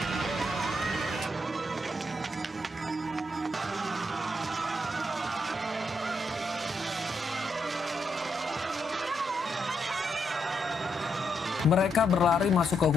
Mereka berlari masuk ke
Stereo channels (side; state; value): both; normal; correlation 0.79